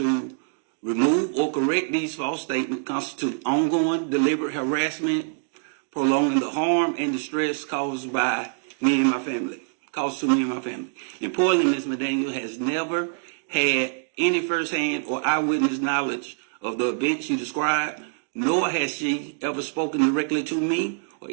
remove or correct these false statements constitute ongoing deliberate harassment, prolonging the harm and distress caused by me and my family. Importantly, Ms. McDaniel has never had any firsthand or eyewitness knowledge of the event she described, nor has she ever spoken directly to me or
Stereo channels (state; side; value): silent; left; digital silence